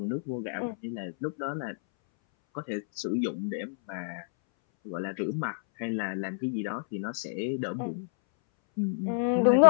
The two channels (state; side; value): silent; right; 59 dB below the other